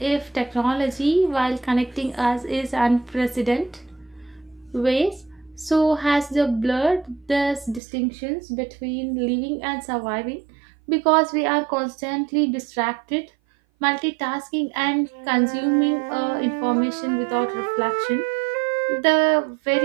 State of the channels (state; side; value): drops out; left; at 7.8 s